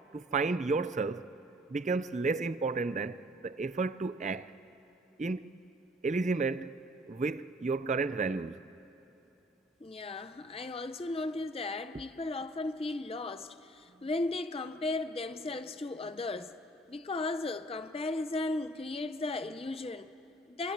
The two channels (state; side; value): normal; both; correlation 0.56